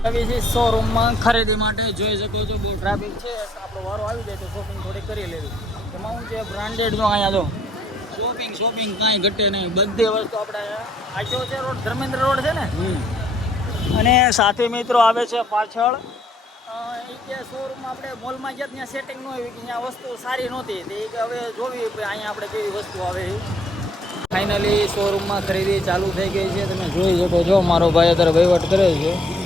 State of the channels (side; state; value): both; normal; correlation 0.65